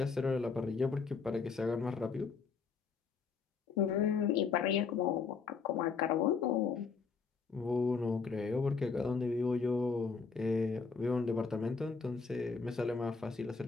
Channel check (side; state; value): right; quieter; 5.1 dB